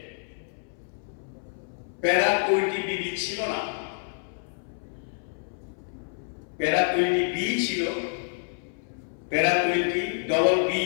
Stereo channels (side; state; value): right; silent; 59 dB below the other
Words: প্যারা 20 বিবি ছিল না, প্যারা 20 বি ছিল, প্যারা 20 ডবল বি